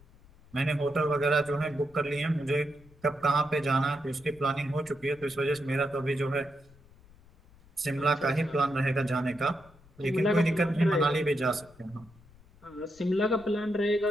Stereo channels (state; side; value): noise; left; rumble, 26 dB below the sound